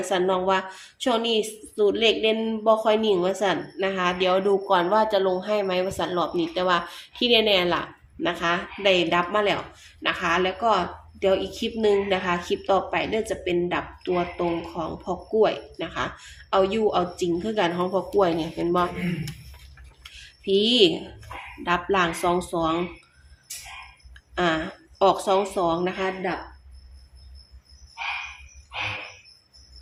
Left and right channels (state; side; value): identical; both; correlation 1.00